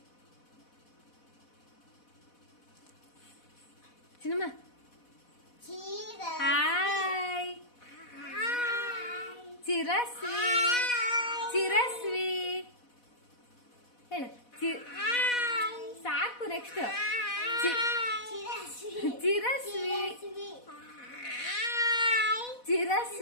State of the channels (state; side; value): late; right; 4.1 ms